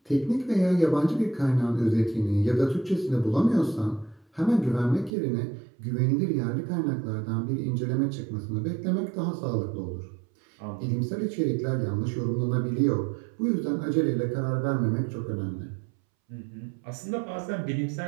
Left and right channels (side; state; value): left; drops out; at 5.1 s